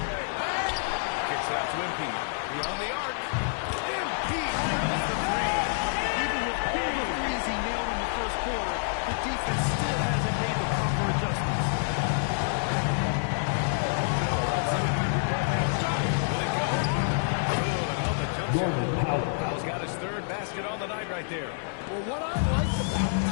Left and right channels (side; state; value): right; silent; digital silence